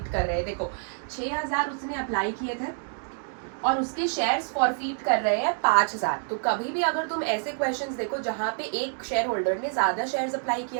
कर रहे हैं। देखो, 6,000 उसने अप्लाई किए थे और उसके शेयर्स फॉरफीट कर रहे हैं 5,000। तो कभी भी अगर तुम ऐसे क्वेश्चंस देखो जहां पे एक शेयर होल्डर ने ज्यादा शेयर्स अप्लाई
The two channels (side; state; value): left; silent; 60 dB below the other